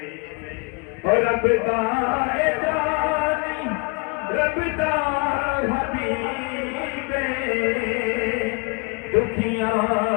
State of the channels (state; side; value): quieter; right; 31.0 dB